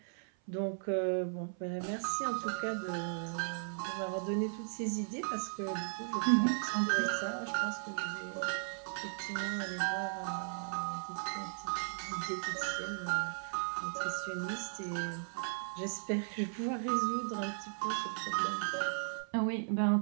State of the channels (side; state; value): left; silent; 53 dB below the other